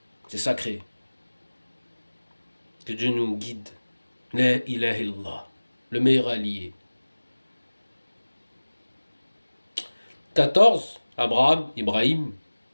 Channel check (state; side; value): inverted; both; correlation -1.00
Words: C'est sacré. Que Dieu nous guide. La ilaha illallah, le meilleur allié. 14, Abraham, Ibrahim,